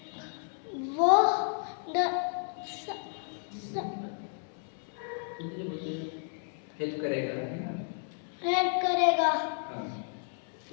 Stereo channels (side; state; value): right; silent; 56 dB below the other